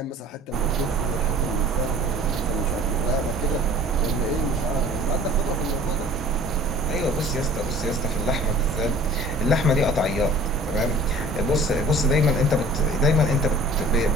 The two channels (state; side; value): normal; both; correlation 0.48